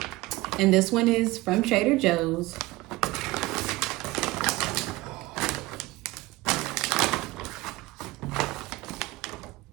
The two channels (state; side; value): quieter; left; 19.9 dB